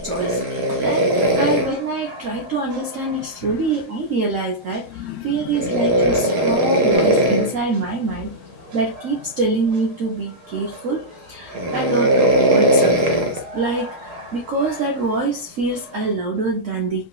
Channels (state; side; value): normal; both; correlation -0.12